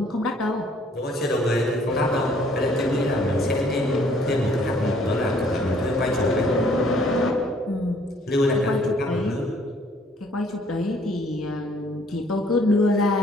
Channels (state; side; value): normal; both; correlation 0.61